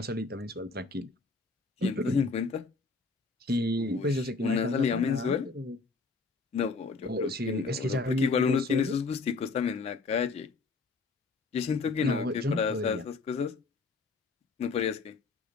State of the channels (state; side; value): quieter; right; 4.1 dB